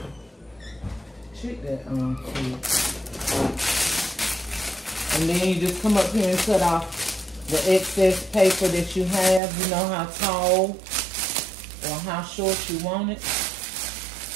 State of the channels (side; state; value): left; drops out; at 9.4 s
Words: Check that and then you just come up here and cut off the excess paper that you have. You know how tall or how short you want it.